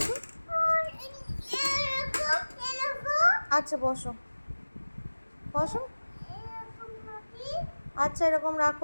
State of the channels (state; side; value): inverted; both; correlation -1.00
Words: আচ্ছা বসো বসো। আচ্ছা এরকম